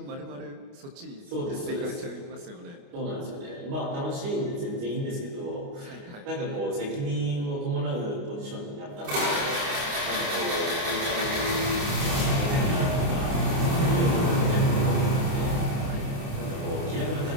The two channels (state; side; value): late; left; 29 ms